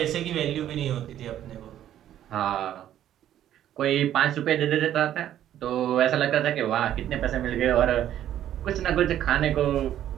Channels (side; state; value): left; quieter; 11.5 dB